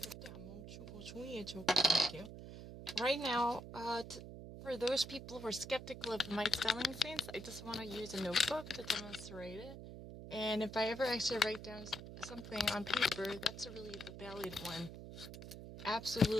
안 멈추고 종이에 적어볼게요. Right now, for those people who are skeptical of my spelling sense, I just want to use a notebook to demonstrate it. And if I ever actually write down something on paper, that's really the valid one.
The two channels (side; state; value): right; noise; hum, 11 dB below the sound